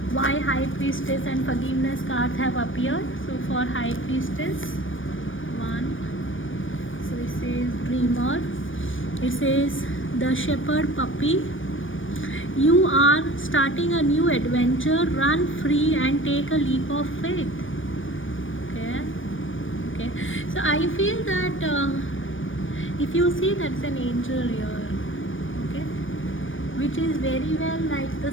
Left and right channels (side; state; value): right; late; 0.57 ms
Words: why High Priestess and Forgiveness cards have appeared. So for High Priestess, 1. So it says Dreamer. It says the Shepherd Puppy. You are starting a new adventure. Run free and take a leap of faith. Okay. So I feel that if you see, that's an angel here. Which is very well like the